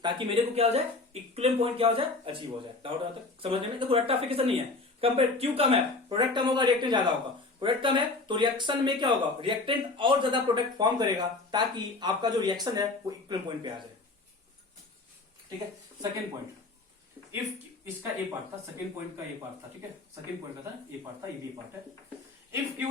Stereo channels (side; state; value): right; quieter; 3.5 dB